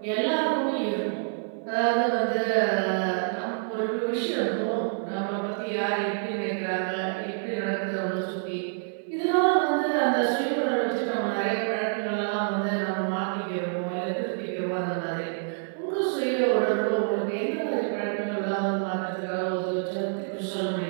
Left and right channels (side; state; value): left; silent; digital silence